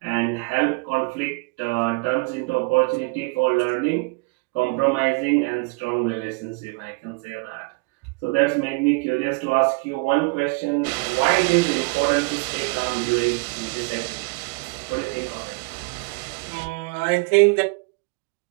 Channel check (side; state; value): left; quieter; 28.5 dB